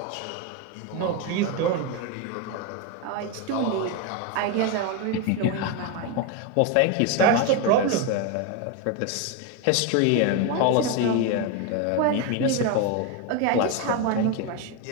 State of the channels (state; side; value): different; both; correlation 0.02